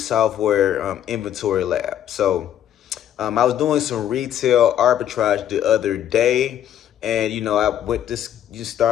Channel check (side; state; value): right; quieter; 10.6 dB